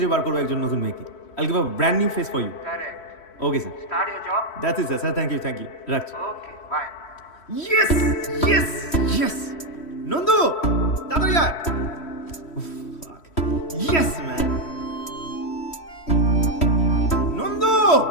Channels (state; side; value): late; right; 3.1 ms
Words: বার করবো একজন নতুন মেয়েকে। I'll give a brand new face for you. Correct. Okay sir. Start your job. That's it sir, thank you রাখছি। Okay bye. ইয়েস নন্দু, তাড়াতাড়ি আয়। Yes man. নন্দু,